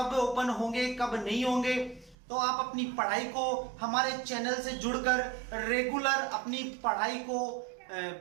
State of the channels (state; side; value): drops out; left; at 2.1 s